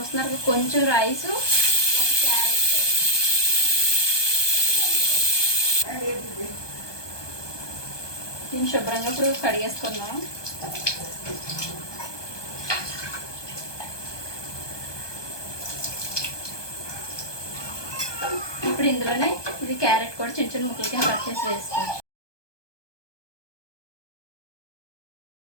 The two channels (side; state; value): right; late; 1.2 ms